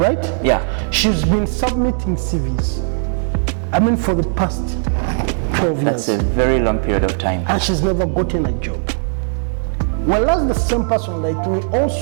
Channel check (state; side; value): silent; left; digital silence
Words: She's been submitting CVs. I mean, for the past 12 years. That's a very long period of time. And she's never gotten a job. Well, that's the same person like me.